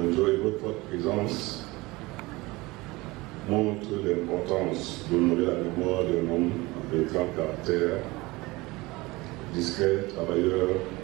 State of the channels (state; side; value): quieter; left; 22.0 dB